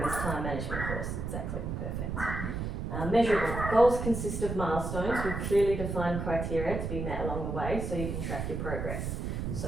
this time management course, exactly, perfect. Measurable, goals consist of milestones with clearly defined criteria to be met along the way so you can track your progress.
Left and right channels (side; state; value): right; noise; rumble, 3 dB below the sound